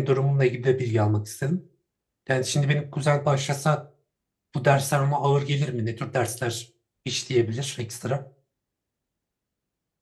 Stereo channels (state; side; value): identical; both; correlation 1.00